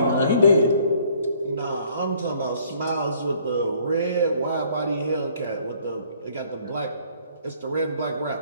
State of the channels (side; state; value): both; inverted; correlation -0.60